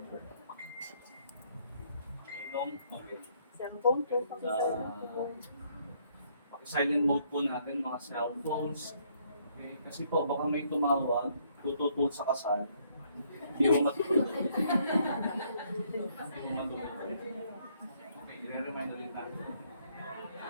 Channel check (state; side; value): inverted; both; correlation -0.68